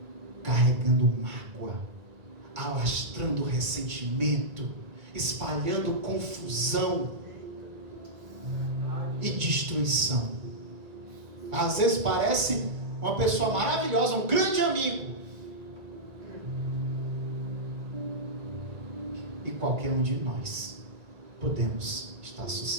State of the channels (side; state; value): left; late; 1.9 ms